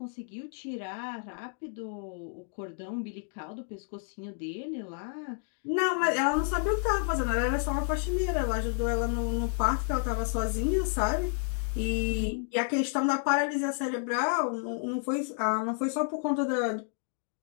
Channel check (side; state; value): right; silent; 57 dB below the other